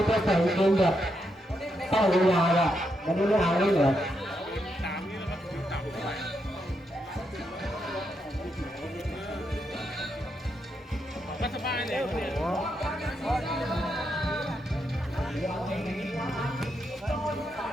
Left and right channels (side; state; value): both; normal; correlation 0.81